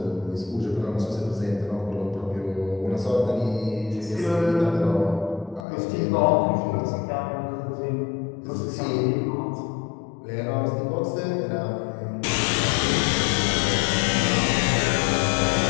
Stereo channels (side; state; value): right; drops out; at 5.6 s